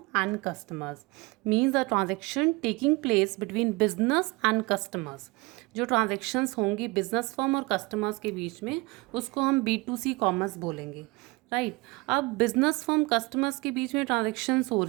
and customers. Means the transaction taking place between business and customers. जो ट्रांजेक्शन्स होंगी बिजनेस फर्म और कस्टमर्स के बीच में, उसको हम B2C कॉमर्स बोलेंगे, राइट। अब बिजनेस फर्म कस्टमर्स के बीच में ट्रांजेक्शन्स हो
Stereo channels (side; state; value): left; quieter; 24.5 dB